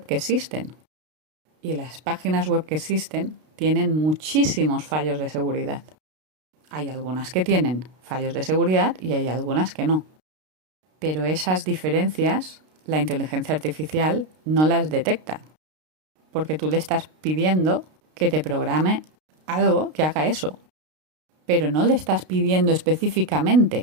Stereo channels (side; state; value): left; late; 32 ms